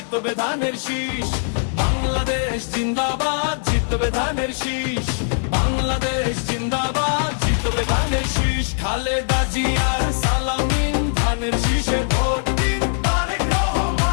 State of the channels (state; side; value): silent; right; digital silence